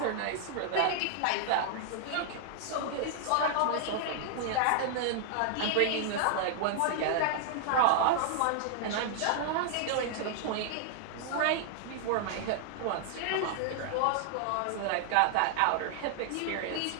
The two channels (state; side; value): different; both; correlation 0.00